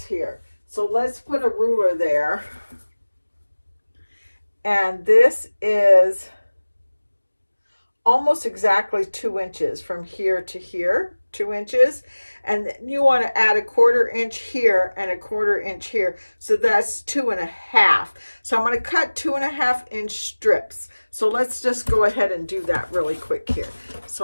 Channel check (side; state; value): both; inverted; correlation -1.00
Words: here? So let's put a ruler there. And this is almost exactly 2 inches from here to here, 2 inches. And you want to add a 1/4 inch here and a 1/4 inch here. So that's 2.5. So I'm going to cut 2.5 inch strips. So let's just go ahead and do that really quick here.